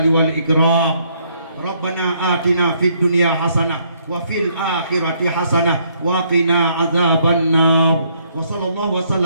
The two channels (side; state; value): both; inverted; correlation -0.69